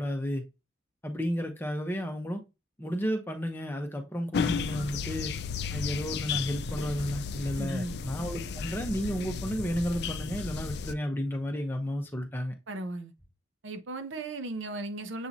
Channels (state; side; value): normal; both; correlation 0.77